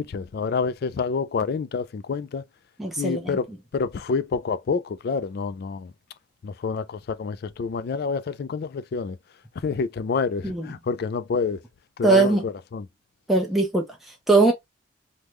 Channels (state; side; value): normal; both; correlation 0.27